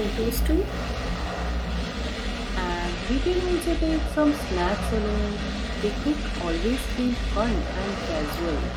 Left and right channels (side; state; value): both; identical; correlation 1.00